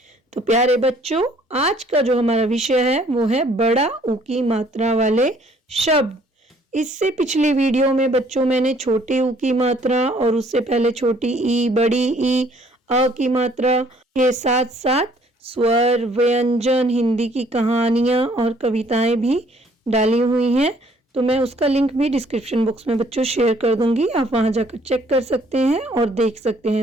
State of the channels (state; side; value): normal; both; correlation 0.61